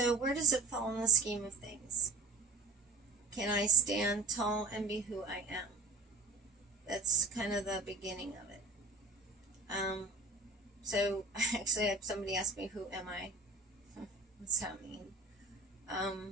where does it fall in the scheme of things? Can I stand tall and be who I am? That's kind of the beginning of it. So actually I had somebody ask me, who am I? What's that mean?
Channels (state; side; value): quieter; left; 3.7 dB